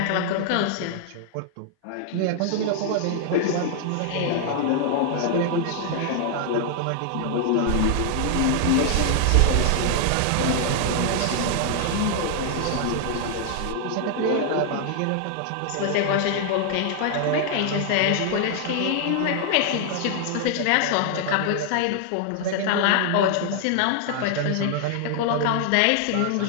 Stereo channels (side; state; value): both; different; correlation 0.00